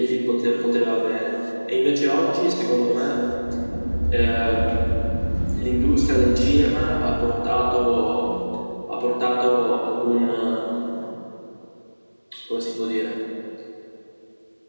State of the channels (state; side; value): inverted; both; correlation -1.00